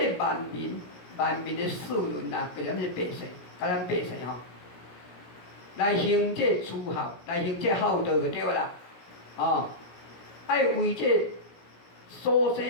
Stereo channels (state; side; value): late; right; 17 ms